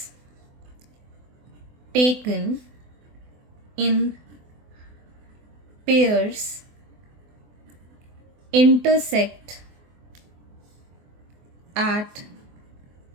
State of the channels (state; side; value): late; left; 24 ms